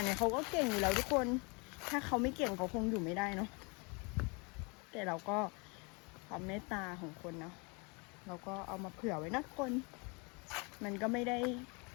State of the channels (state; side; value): quieter; right; 31.0 dB